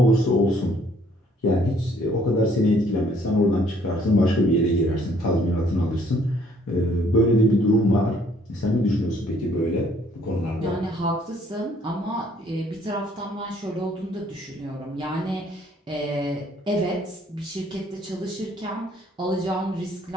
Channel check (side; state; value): both; normal; correlation 0.62